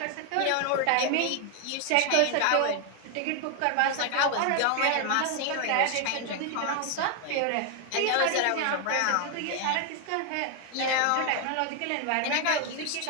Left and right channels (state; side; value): different; both; correlation 0.01